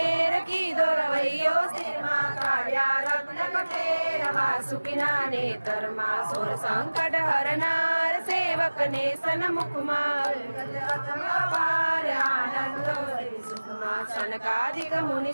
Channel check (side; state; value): both; inverted; correlation -1.00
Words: की दोरवैयो स्थिर माँ काव्या रत्न कठेर वासुकिना नेतर माँ सुर संकट हरनार सेवक ने सन्मुख माँ आनंद सुख माँ सनकादिक मुनि